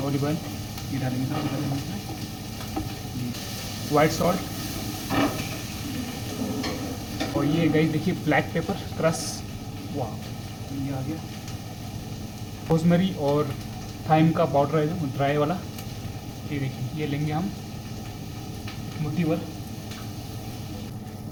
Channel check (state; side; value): identical; both; correlation 1.00